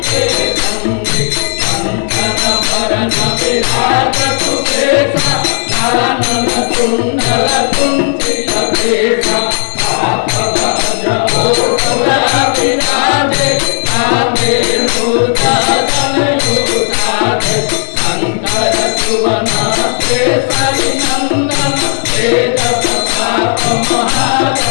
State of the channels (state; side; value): silent; right; 67 dB below the other